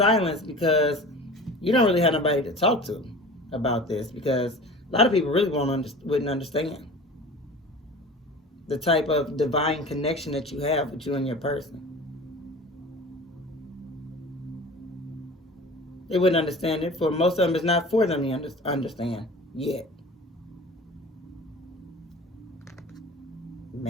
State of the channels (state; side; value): normal; both; correlation 0.39